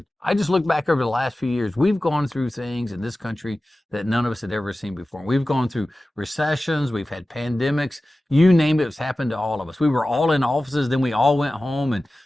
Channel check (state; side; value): normal; both; correlation 0.95